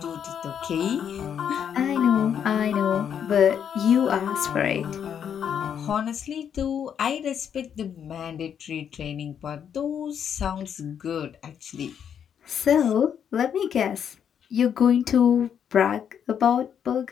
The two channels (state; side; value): quieter; right; 8.3 dB